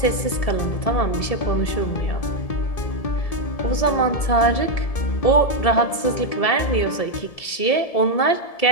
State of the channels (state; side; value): late; right; 1.7 ms